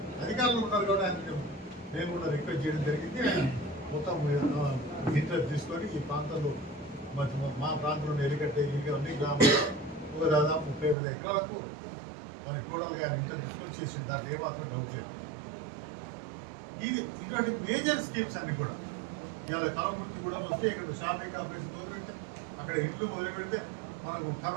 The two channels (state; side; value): drops out; left; at 11.0 s